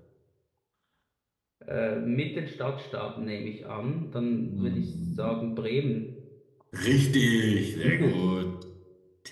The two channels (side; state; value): both; identical; correlation 1.00